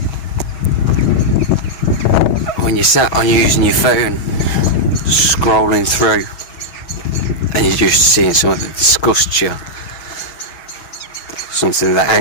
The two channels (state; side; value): late; right; 6.2 ms